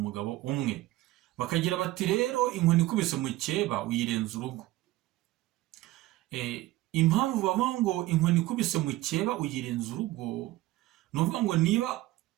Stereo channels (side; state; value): left; quieter; 17.2 dB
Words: umwe. Bakagira bati rero inkoni ikubise mu cyeba uyirenza urugo. Impamvu bavuga ngo inkoni ikubise mu cyeba uyirenza urugo, ni ukuvuga ngo niba